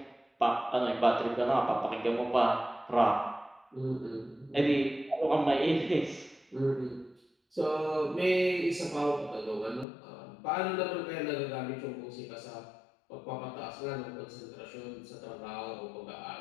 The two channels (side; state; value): right; drops out; at 9.9 s